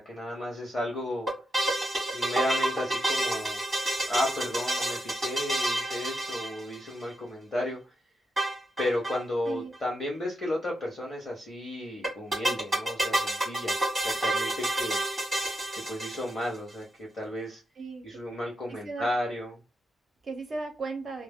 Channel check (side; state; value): both; normal; correlation 0.84